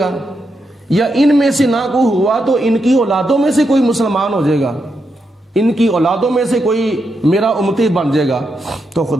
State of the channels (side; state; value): both; normal; correlation 0.84